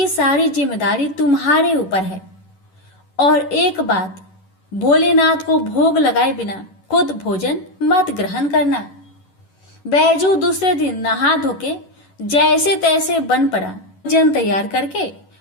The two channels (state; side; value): late; right; 11 ms